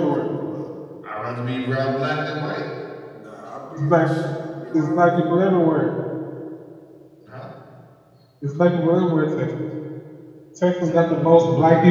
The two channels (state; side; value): identical; both; correlation 1.00